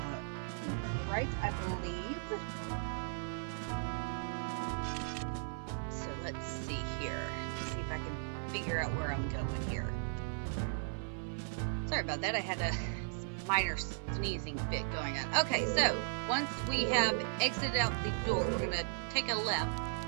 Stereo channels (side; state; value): left; silent; 53 dB below the other